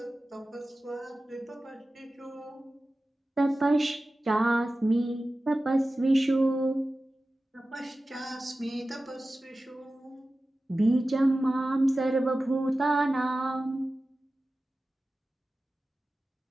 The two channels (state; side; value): normal; both; correlation 0.95